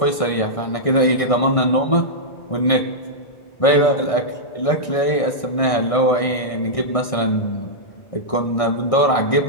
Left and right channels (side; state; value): right; late; 1.6 ms